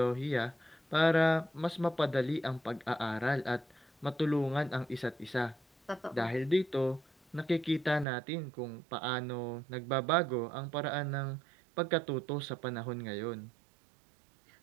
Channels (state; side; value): drops out; left; at 8.1 s